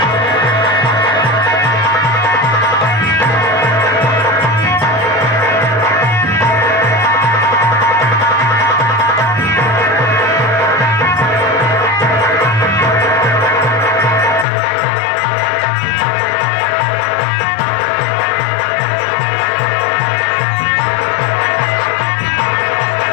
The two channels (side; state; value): right; drops out; at 14.5 s